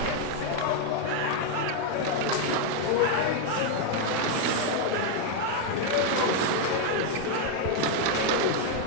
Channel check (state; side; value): different; both; correlation 0.01